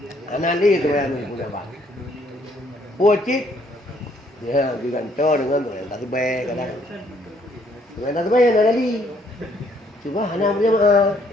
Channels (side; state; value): both; normal; correlation 0.66